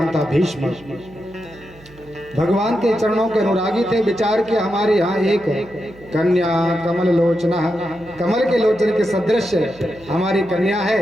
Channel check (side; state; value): right; noise; hum, 24 dB below the sound